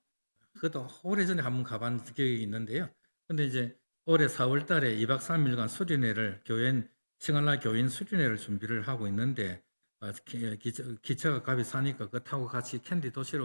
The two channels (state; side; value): inverted; both; correlation -1.00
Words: 그것도 오래전에 한 번 가본 기억이 있는데요. 근데 이제 올해 4월 달에 2박 3일간 수련회를 싱갈라 교인 수련회를 준비를 하고 있는데 기차가 값이 싸니까 그거 타고 같이 캔디